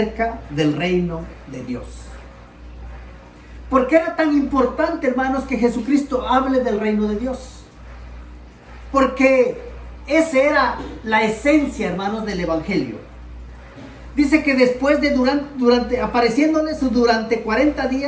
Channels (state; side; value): identical; both; correlation 1.00